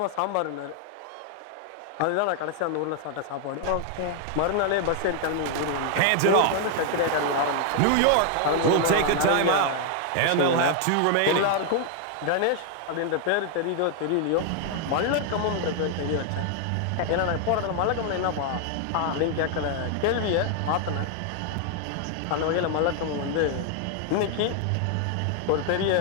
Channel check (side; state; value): both; different; correlation 0.00